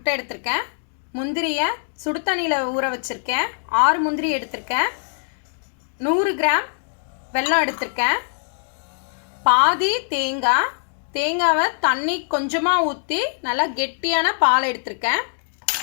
எடுத்திருக்கேன். முந்திரியை சுடு தண்ணியில் ஊற வச்சுருக்கேன். 6 முந்திரி எடுத்திருக்கேன். 100 கிராம் வெல்லம் எடுத்திருக்கேன். பாதி தேங்காவை தண்ணி கொஞ்சமாக ஊற்றி நல்லா கெட்டியான பால் எடுத்திருக்கேன்.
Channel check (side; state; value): right; silent; digital silence